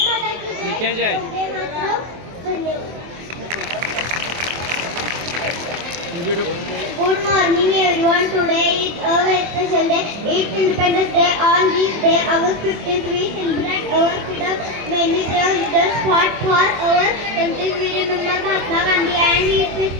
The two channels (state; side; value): late; left; 24 ms